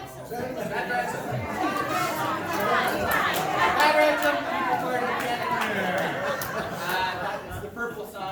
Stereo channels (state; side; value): identical; both; correlation 1.00